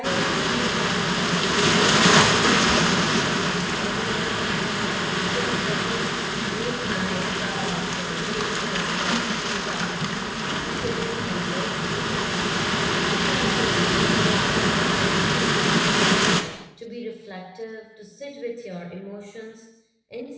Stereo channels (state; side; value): identical; both; correlation 1.00